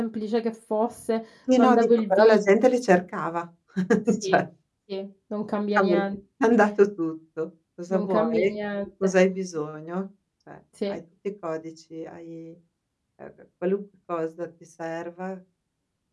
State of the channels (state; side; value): identical; both; correlation 1.00